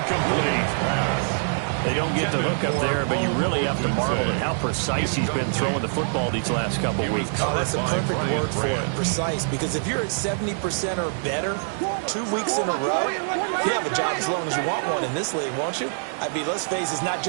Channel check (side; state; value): left; silent; digital silence